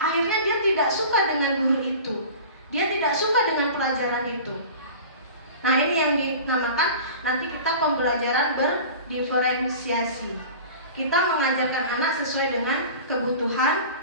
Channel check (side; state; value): both; inverted; correlation -0.38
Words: dia tidak suka dengan guru itu, dia tidak suka dengan pelajaran itu. Nah ini yang dinamakan nanti kita pembelajaran berdiferensiasi. Kita mengajarkan anak sesuai dengan kebutuhan